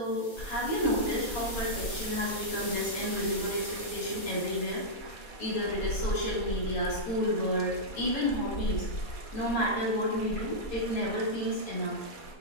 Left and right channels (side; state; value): right; late; 4.2 ms